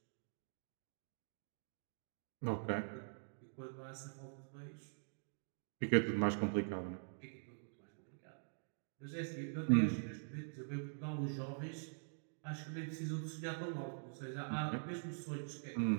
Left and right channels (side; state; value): left; silent; digital silence